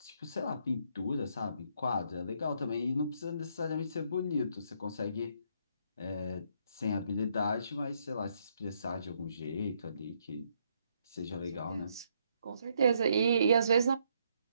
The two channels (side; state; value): both; inverted; correlation -0.72